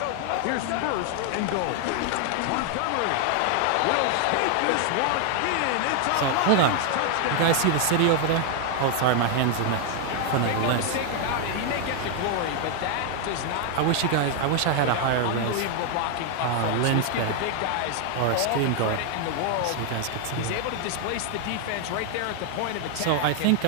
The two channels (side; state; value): both; different; correlation 0.00